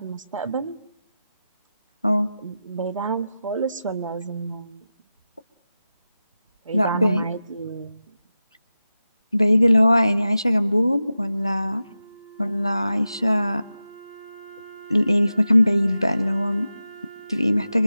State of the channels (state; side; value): inverted; both; correlation -0.93